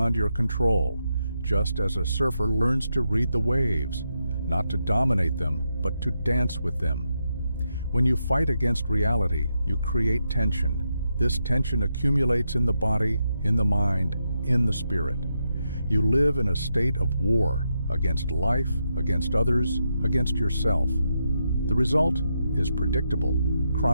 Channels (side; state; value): both; inverted; correlation -0.83